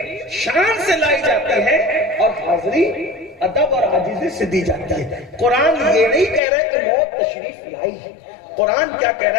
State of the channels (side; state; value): right; drops out; at 6.4 s